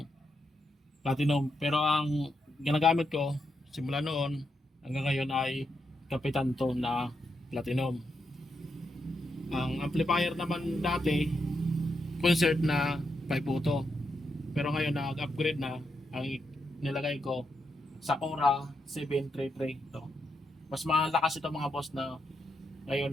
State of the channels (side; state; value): both; normal; correlation 0.83